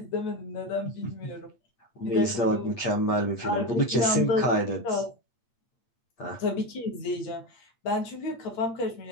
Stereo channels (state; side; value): late; right; 8.6 ms